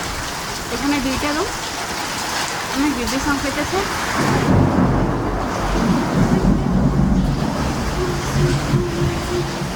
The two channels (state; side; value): identical; both; correlation 1.00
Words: এখানে দুইটা রুম অনেক বিদ্যুৎ সংকেতেছে